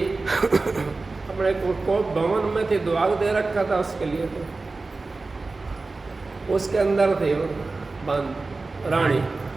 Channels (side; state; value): left; quieter; 3.6 dB